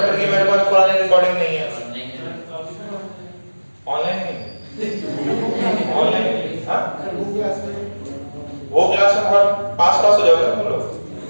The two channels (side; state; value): both; inverted; correlation -1.00